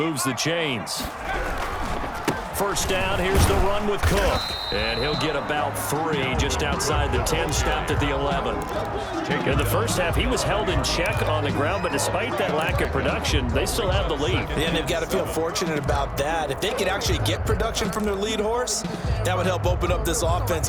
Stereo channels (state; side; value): identical; both; correlation 1.00